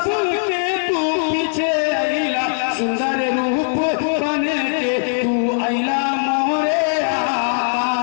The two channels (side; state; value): right; silent; 66 dB below the other